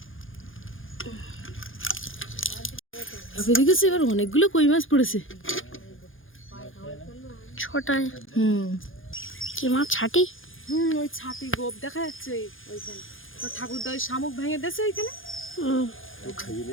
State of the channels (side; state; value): right; late; 0.58 ms